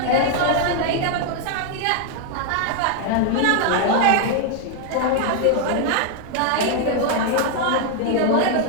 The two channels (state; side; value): different; both; correlation 0.00